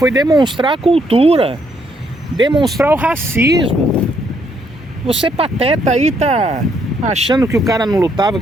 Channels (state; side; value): normal; both; correlation 0.72